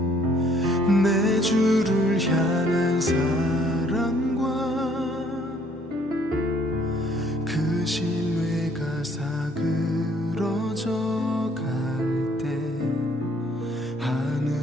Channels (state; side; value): normal; both; correlation 0.62